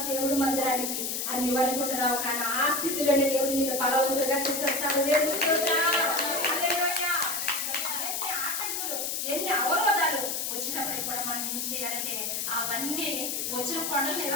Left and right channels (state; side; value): noise; left; hiss, 1 dB below the sound